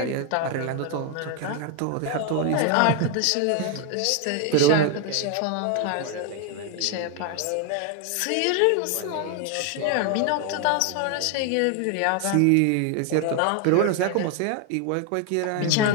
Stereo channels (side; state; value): both; different; correlation 0.01